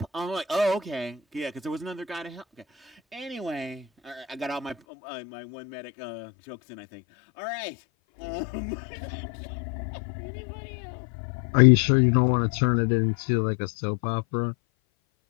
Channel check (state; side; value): drops out; right; at 4.8 s